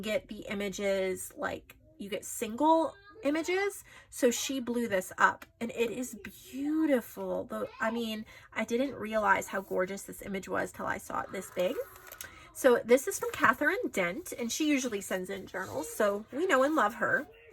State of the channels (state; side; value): identical; both; correlation 1.00